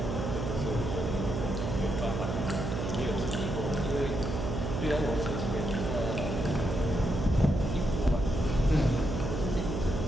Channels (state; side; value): noise; right; hum, 2 dB below the sound